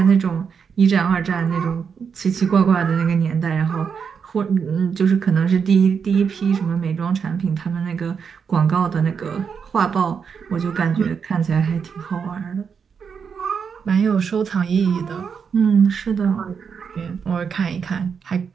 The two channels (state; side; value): quieter; left; 6.4 dB